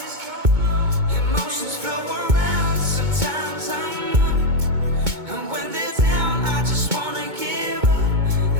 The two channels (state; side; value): late; left; 2.2 ms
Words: Emotions flow around, sometimes I'm up, and when they're down I just wanna give up.